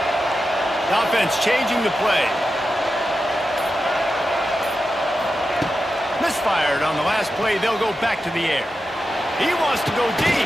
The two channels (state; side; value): normal; both; correlation 0.90